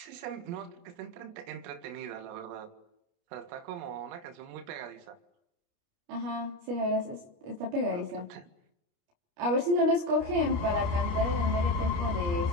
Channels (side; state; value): left; late; 29 ms